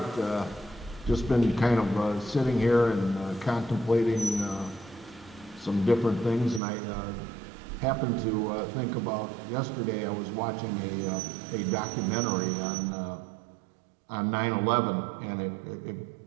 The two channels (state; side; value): drops out; left; at 6.6 s